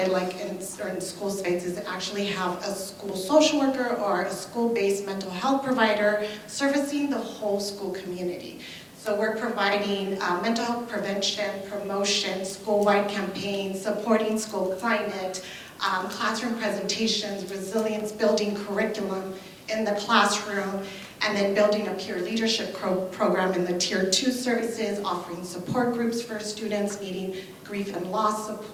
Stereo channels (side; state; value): both; identical; correlation 1.00